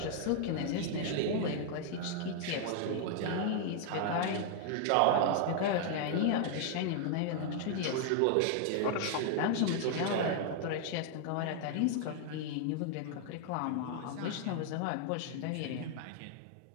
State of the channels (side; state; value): both; different; correlation 0.00